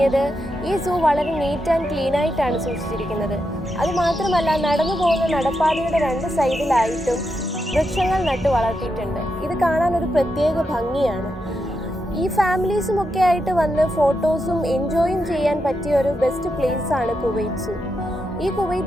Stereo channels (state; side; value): normal; both; correlation 0.85